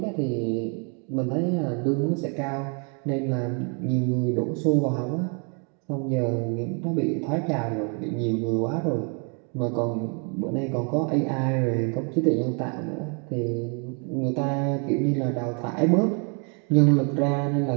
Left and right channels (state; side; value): quieter; left; 37.8 dB